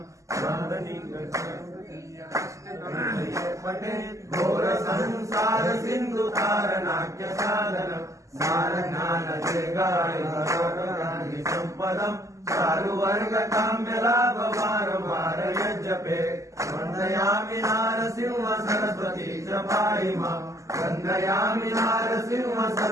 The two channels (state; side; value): late; left; 0.16 ms